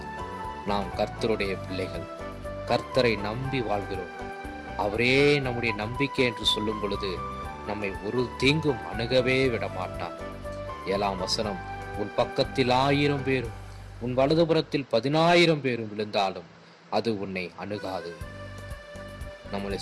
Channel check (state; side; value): identical; both; correlation 1.00